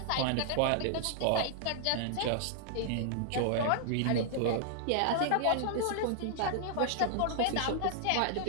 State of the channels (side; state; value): both; different; correlation -0.01